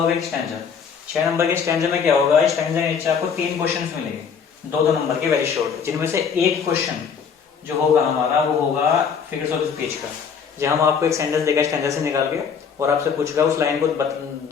एक स्टैंजा। 6 नंबर के स्टैंजा में क्या होगा, स्टैंजा के नीचे आपको 3 क्वेश्चन मिलेंगे, 2 नंबर के वेरी शॉर्ट, जिनमें से एक क्वेश्चन जो होगा हमारा वो होगा फिगर्स ऑफ स्पीच का। जहां हम आपको एक सेंटेंस देगा स्टैंजा से निकाल के और आपसे पूछेगा, उस लाइन को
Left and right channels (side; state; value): right; quieter; 6.6 dB